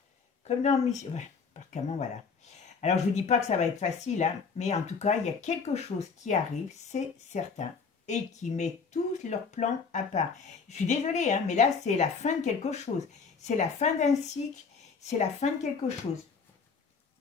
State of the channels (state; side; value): quieter; right; 5.3 dB